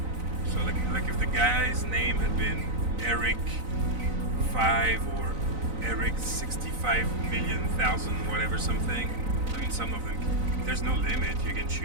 So like if the guy's name had been Eric 5 or Eric 65,000,000 whatever something. I mean, some of them, there's no limit. You can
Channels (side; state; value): left; late; 4.0 ms